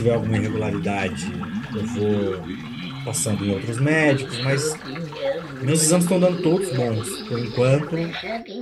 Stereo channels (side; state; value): both; identical; correlation 1.00